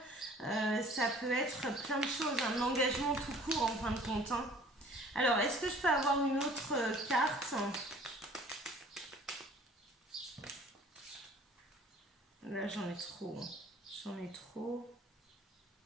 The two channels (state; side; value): normal; both; correlation 0.51